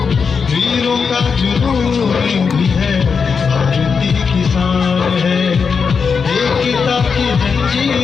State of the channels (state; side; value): quieter; right; 5.7 dB